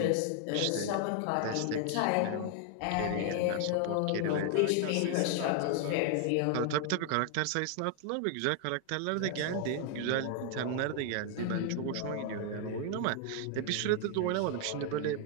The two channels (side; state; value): both; different; correlation 0.00